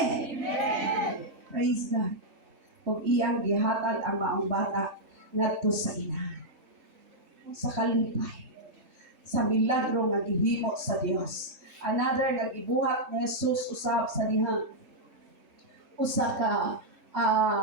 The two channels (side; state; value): left; late; 4.5 ms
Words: Amen! Praise God. Kung iyang gihatag ang maong bata ngadto sa ina. Sa kalipay. Sa milagro nga gihimo sa Dios. Another nga gibuhat ni Jesus usab sa dihang usa ka